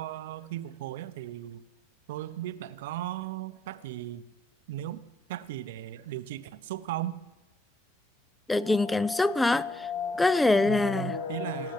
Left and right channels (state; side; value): normal; both; correlation 0.72